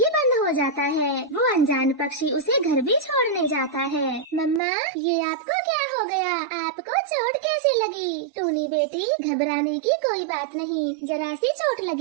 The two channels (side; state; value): left; drops out; at 4.6 s